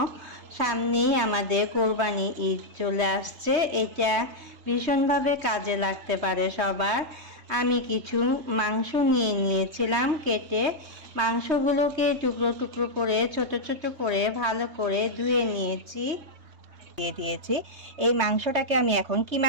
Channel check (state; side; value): late; left; 3.1 ms